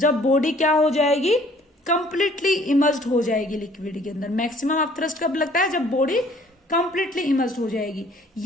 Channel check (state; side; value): normal; both; correlation 0.57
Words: बॉडी क्या हो जाएगी, कंप्लीटली इमर्स्ड हो जाएगी लिक्विड के अंदर। मैक्सिमम अपथ्रस्ट कब लगता है, जब बॉडी कंप्लीटली इमर्स्ड हो जाएगी।